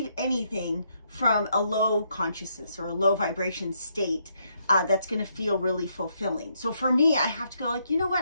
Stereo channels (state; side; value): inverted; both; correlation -0.75